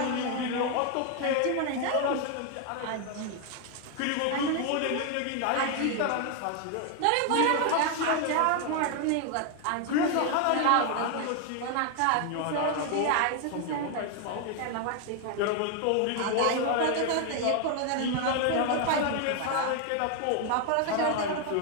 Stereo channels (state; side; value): different; both; correlation 0.01